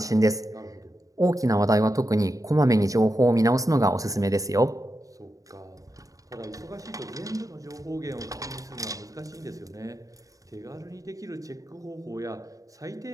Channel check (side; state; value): left; late; 0.16 ms